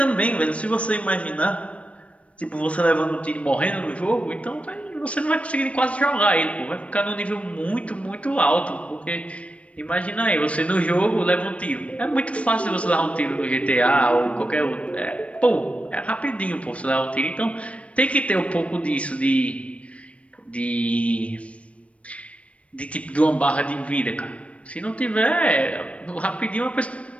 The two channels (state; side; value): late; right; 0.063 ms